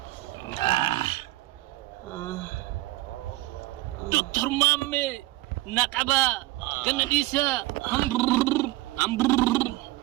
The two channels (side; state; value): left; quieter; 18.8 dB